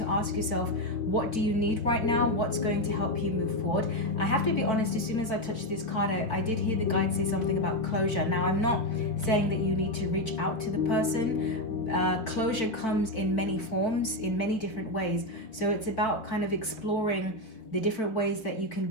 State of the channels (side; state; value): right; late; 4.5 ms